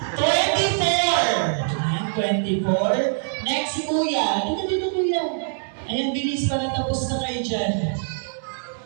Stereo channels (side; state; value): left; silent; 62 dB below the other